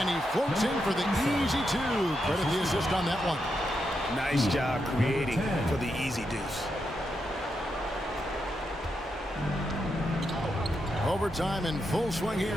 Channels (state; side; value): normal; both; correlation 0.84